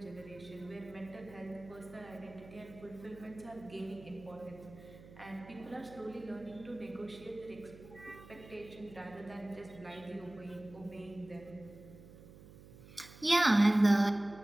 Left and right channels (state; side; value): noise; right; hum, 18 dB below the sound